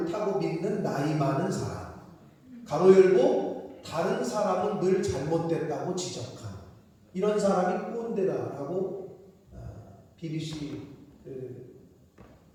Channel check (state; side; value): identical; both; correlation 1.00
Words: 믿는 나이 많은 사람, 가로 열고 다른 사람은 늘 잘못됐다고 지적한 이런 사람이 꼰대다라고 BBC